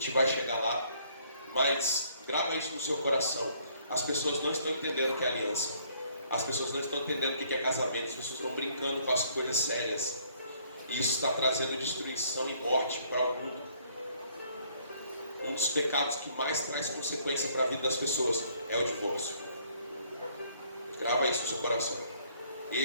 vai chegar lá. Mas grava isso no seu coração. As pessoas não estão entendendo o que é aliança. As pessoas não estão entendendo o que é casamento. As pessoas estão brincando com as coisas sérias. E isso está trazendo destruição e morte para o mundo. Um dos pecados que mais traz consequência para a vida das pessoas é o divórcio. Grava isso no seu coração.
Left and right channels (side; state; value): both; inverted; correlation -0.64